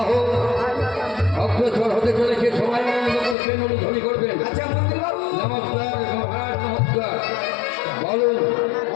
অগ্রসর হতে চলেছে। সবাই আনন্দ করবেন, অনুধ্বনি করবেন। আচ্ছা মন্ত্রী বাবু। নমস্কার মহারাজ, নমস্কার। বলুন।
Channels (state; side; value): drops out; right; at 3.4 s